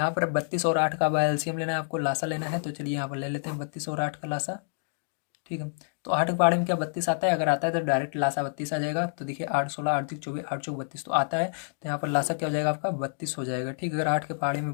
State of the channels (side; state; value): right; silent; digital silence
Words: पर 32 और 8 का एलसीएम लेना है आपको, लासा लेना है। तो चलिए यहाँ पर ले लेते हैं 32 और 8 का लासा, ठीक है। तो 8 के पहाड़े में क्या 32 आता है, अगर आता है तो डायरेक्ट लासा 32 आ जाएगा। तो देखिए 8 16 8 3 24 8 4 32 तो आता है, तो यहाँ पर लासा क्या हो जाएगा आपका 32 हो जाएगा, ठीक है। अगर 8 के पहाड़े में